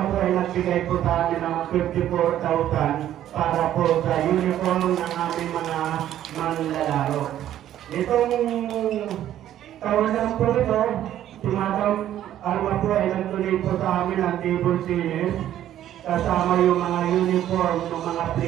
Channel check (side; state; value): left; quieter; 11.8 dB